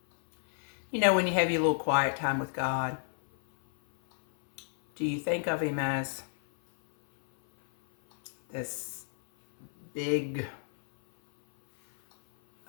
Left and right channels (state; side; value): silent; right; 58 dB below the other